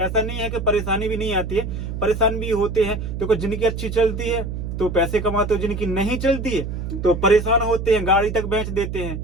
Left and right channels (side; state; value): right; noise; hum, 5 dB below the sound